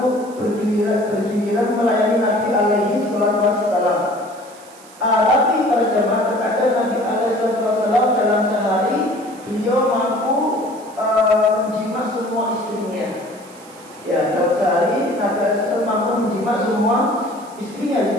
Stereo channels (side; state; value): right; noise; hiss, 23 dB below the sound